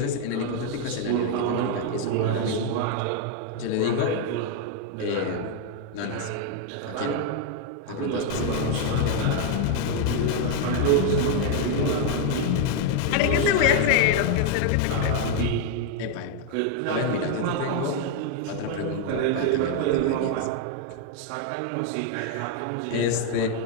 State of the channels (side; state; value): both; different; correlation 0.01